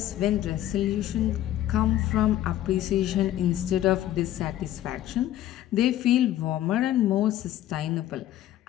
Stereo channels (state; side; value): quieter; right; 13.0 dB